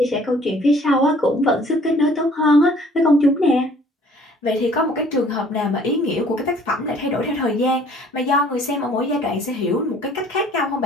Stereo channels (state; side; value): normal; both; correlation 0.56